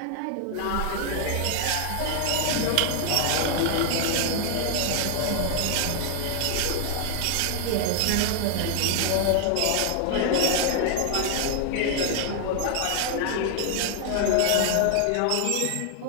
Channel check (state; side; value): different; both; correlation 0.00